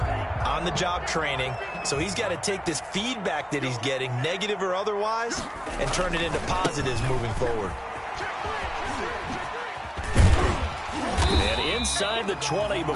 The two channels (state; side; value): identical; both; correlation 1.00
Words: on-the-job training, so he's got to take this feedback that he's getting, negative or otherwise, and turn it into positives moving forward. And inside the 20